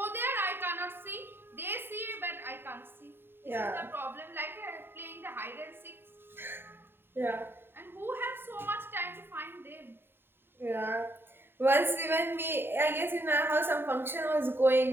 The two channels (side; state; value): left; late; 0.11 ms